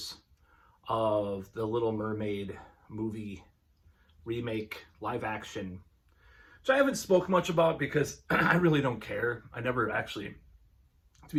of the Little Mermaid movie remake, live action, which I haven't spoke much about because I really don't care. I never actually, to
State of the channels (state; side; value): identical; both; correlation 1.00